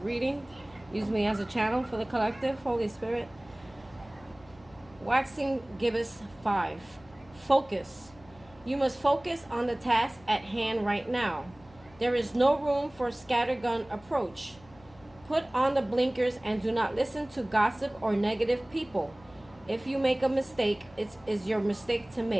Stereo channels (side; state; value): left; noise; hum, 25 dB below the sound